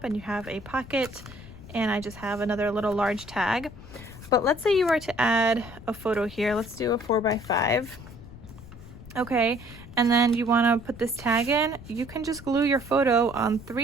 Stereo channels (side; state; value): left; noise; rumble, 16 dB below the sound